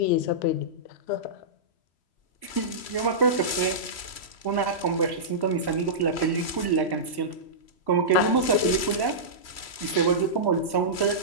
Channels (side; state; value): right; late; 3.1 ms